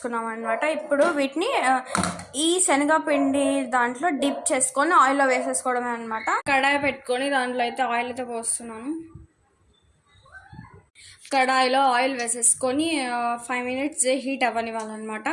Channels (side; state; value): both; identical; correlation 1.00